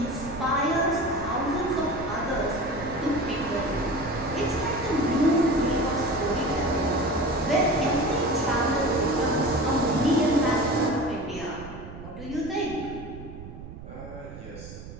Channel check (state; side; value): noise; right; rumble, 13 dB below the sound